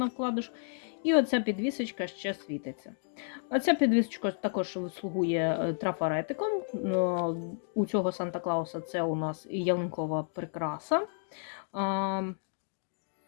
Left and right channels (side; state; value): right; silent; digital silence